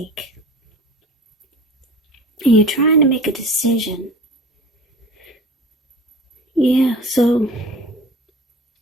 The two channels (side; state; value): both; normal; correlation 0.40